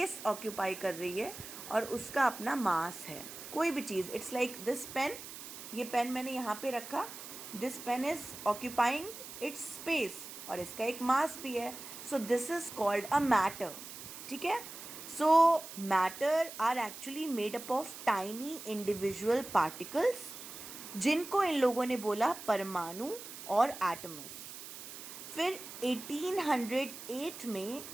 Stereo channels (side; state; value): right; noise; hiss, 12 dB below the sound